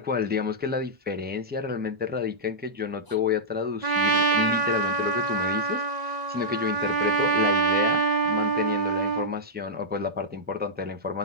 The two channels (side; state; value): left; late; 1.9 ms